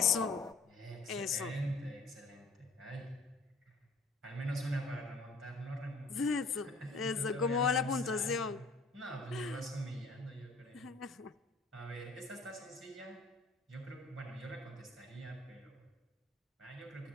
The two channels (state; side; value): quieter; right; 3.5 dB